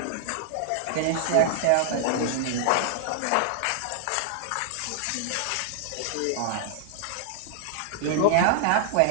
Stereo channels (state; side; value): different; both; correlation -0.01